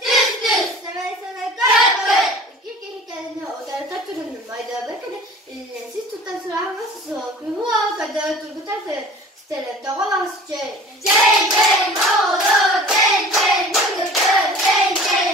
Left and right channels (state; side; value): normal; both; correlation 0.43